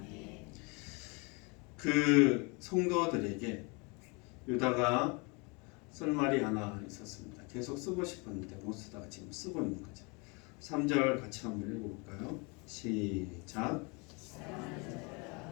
그 성도들에게 유다가 쓸 말이 하나 있었습니다. 계속 쓰고 싶었는데 못 쓰다가 지금 쓰고 있는 거죠. 3절 같이 한번 읽어볼까요? 시작.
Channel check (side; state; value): right; quieter; 30.1 dB